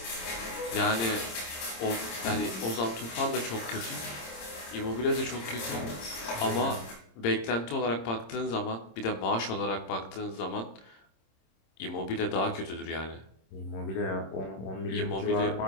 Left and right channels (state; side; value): late; right; 26 ms